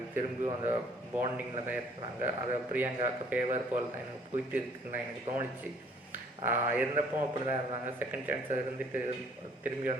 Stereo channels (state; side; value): normal; both; correlation 0.59